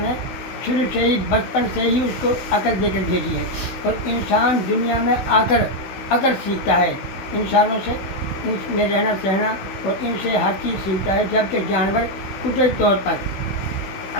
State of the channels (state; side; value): late; right; 16 ms